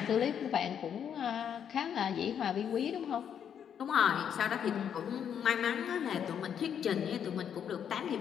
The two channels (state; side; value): quieter; right; 8.5 dB